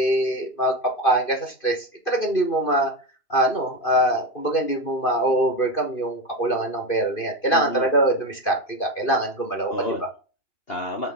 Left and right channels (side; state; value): right; late; 2.5 ms